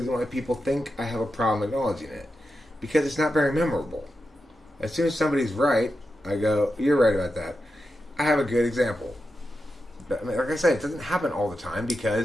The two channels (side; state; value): both; normal; correlation 0.89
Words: why people think I have a problem acknowledging it. Because it's not very memorable. As soon as somebody's right, I go, you're right about that. I have a good example. But, I mean, like I said, it doesn't happen all the time